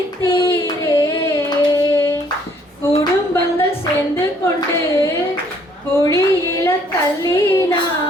குடும்பங்கள் சேர்ந்து கொண்டு குழியில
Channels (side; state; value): both; normal; correlation 0.64